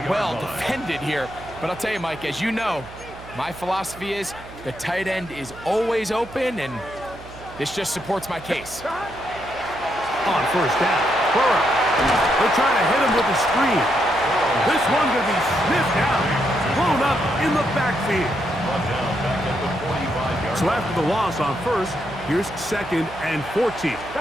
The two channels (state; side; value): noise; right; hum, 17 dB below the sound